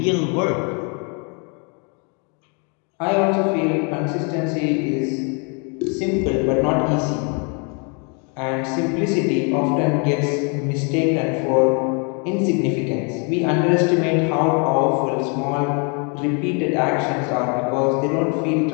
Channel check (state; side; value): quieter; right; 35.9 dB